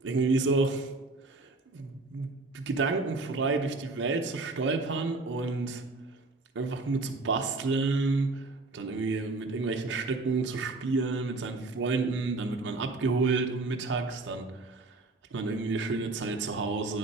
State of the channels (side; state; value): left; quieter; 3.4 dB